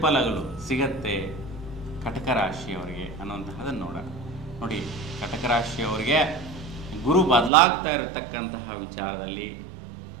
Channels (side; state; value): left; drops out; at 7.5 s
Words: ಸಿಗತ್ತೆ ಕಟಕ ರಾಶಿಯವರಿಗೆ ಅನ್ನುವಂತಹದನ್ನು ನೋಡೋಣ. ನೋಡಿ, ಕಟಕ ರಾಶಿಯವರಿಗೆ ಗುರು ಬದಲಾಗ್ತಾ ಇರತಕ್ಕಂತಹ ವಿಚಾರದಲ್ಲಿ